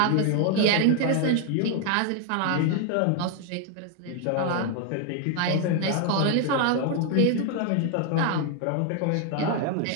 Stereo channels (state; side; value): different; both; correlation 0.00